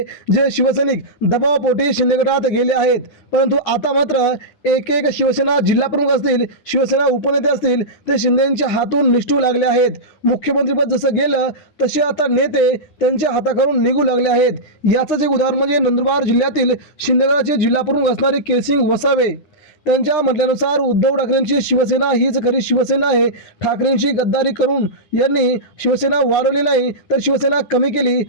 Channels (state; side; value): late; right; 9.8 ms